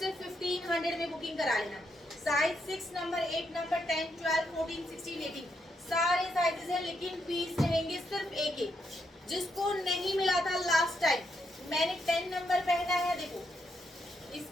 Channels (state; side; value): normal; both; correlation 0.79